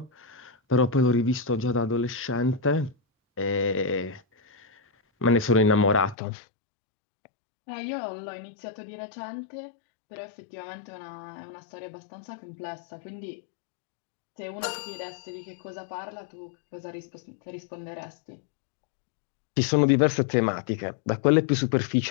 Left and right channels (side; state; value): right; drops out; at 6.2 s